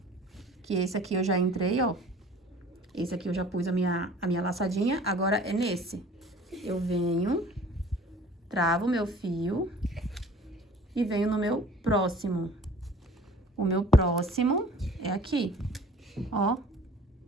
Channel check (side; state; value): both; normal; correlation 0.48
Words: Que esse aqui eu já entrei, ó. Esse aqui eu já pus a minha laçadinha. Agora é nesse. Eu venho, travo o meu fio e venho no meu próximo. O meu próximo é aqui, ó.